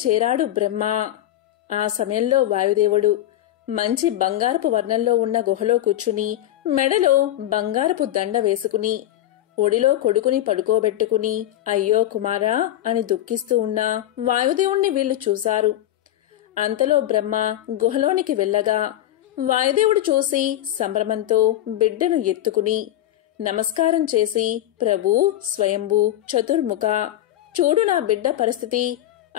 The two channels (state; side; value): quieter; right; 13.3 dB